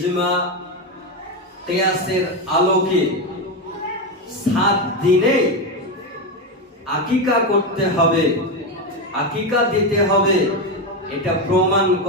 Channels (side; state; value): both; normal; correlation 0.12